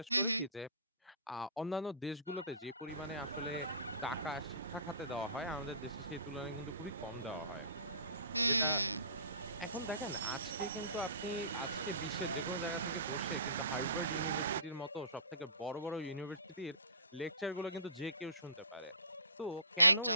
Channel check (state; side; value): inverted; both; correlation -0.41